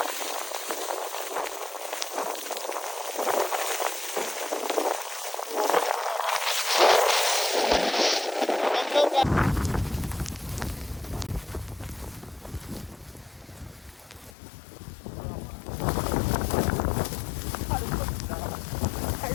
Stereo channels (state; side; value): drops out; right; at 14.3 s